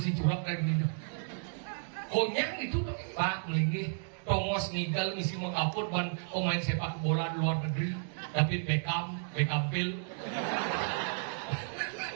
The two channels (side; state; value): left; silent; digital silence